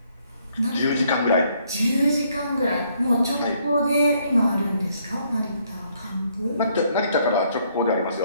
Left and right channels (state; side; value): inverted; both; correlation -0.69